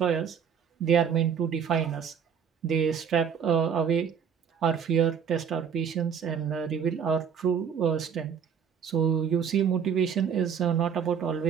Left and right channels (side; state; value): left; quieter; 7.5 dB